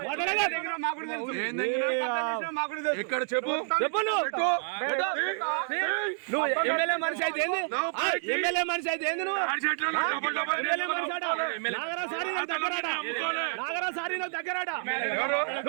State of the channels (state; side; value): silent; left; digital silence